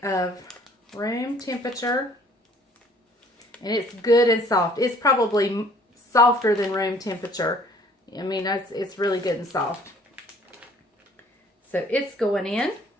of room temperature, and it's good and soft. It's probably softer than room temperature. I mean, it's really good and soft. So it's going in.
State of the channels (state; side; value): normal; both; correlation 0.56